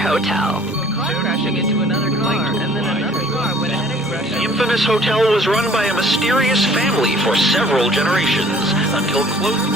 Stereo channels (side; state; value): both; normal; correlation 0.54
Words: Crashing into another car, and then another car went ahead and crashed. The infamous hotel was run by a mysterious family for several generations until close.